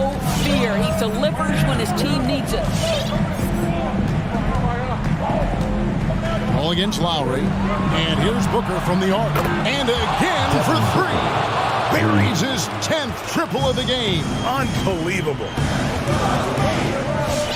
fear. He delivers when his team needs it. Ball against Lowry. And here's Booker from the arc. And again for 3. Buries his 10th triple of the game. Unbelievable.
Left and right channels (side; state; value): both; identical; correlation 1.00